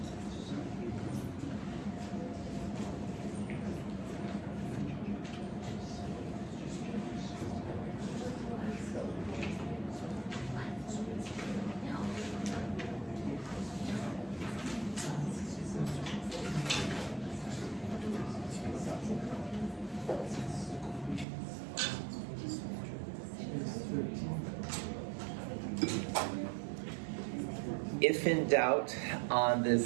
If in doubt on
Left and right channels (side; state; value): left; drops out; at 21.2 s